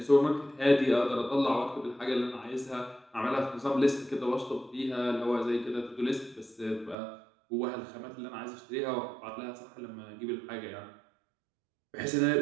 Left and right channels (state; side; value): drops out; left; at 7.0 s